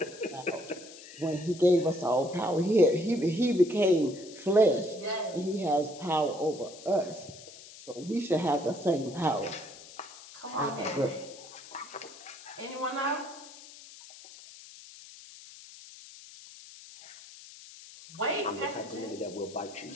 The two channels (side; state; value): left; noise; hiss, 17 dB below the sound